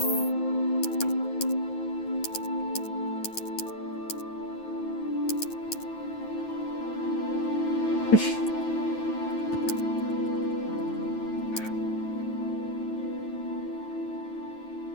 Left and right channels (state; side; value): late; right; 9.3 ms